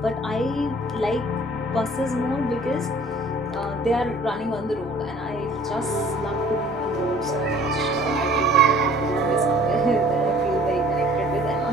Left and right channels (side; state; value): both; normal; correlation 0.52